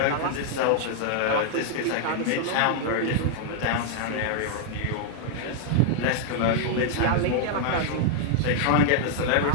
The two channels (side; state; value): both; different; correlation -0.01